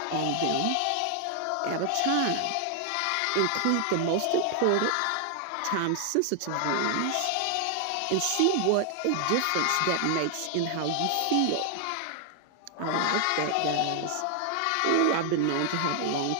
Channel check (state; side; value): different; both; correlation 0.00